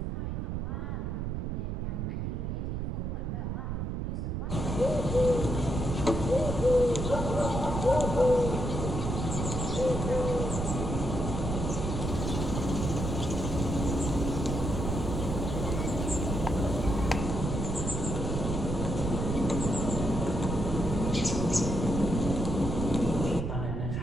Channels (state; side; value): noise; right; rumble, 2 dB below the sound